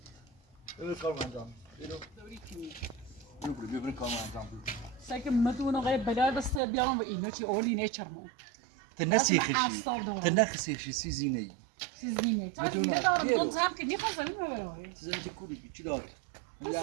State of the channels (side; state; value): left; drops out; at 6.6 s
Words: ببر کار انجام ببر کار انجام بده سعی مدون آقای بلال بس بیارم و اینو چی اولی نیچرمون. تنسی خشی. تنخسی خشی سیزینه ای سیزینه. تا بدون دیگه دارم گیرو. دون زم که میخوام زمین ببرم. سیزینه که کوری چی داره